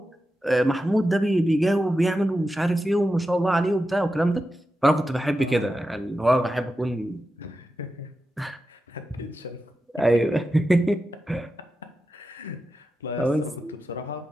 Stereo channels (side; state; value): both; normal; correlation 0.90